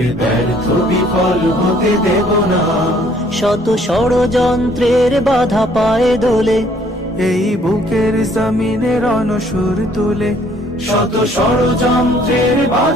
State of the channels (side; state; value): both; normal; correlation 0.61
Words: ব্যর্থ বিফল হতে দেব না। শত ষড়যন্ত্রের বাধা পায়ে দোলে, এই বুকের জমিনে রণসুর তুলে। শত ষড়যন্ত্রের